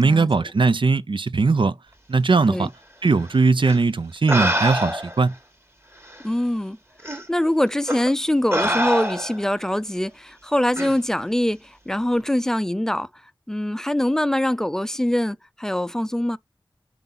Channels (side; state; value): both; normal; correlation 0.86